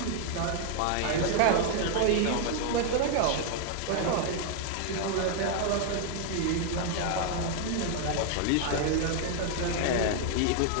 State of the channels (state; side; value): different; both; correlation 0.00